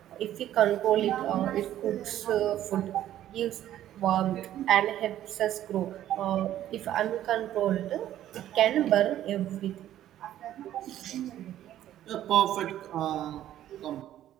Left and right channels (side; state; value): left; quieter; 12.3 dB